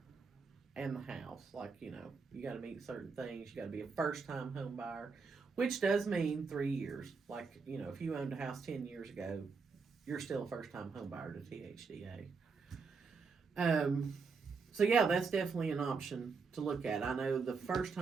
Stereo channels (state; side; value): quieter; left; 4.9 dB